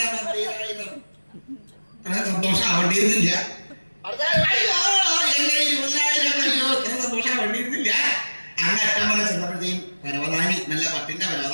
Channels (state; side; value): inverted; both; correlation -1.00